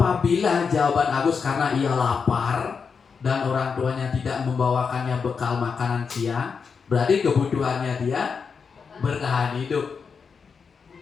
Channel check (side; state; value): right; quieter; 5.7 dB